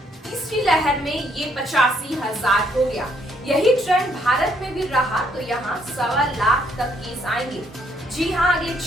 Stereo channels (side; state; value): both; normal; correlation 0.70